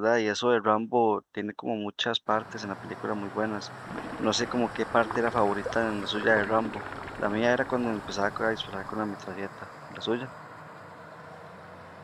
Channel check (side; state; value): both; identical; correlation 1.00